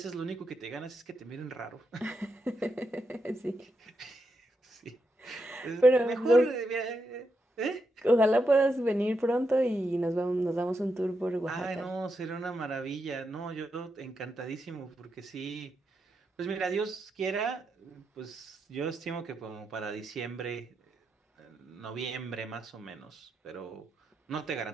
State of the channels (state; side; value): normal; both; correlation 0.84